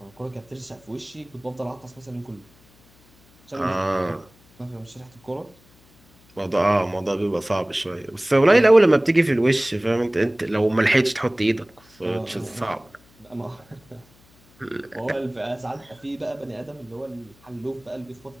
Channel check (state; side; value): noise; left; hum, 29 dB below the sound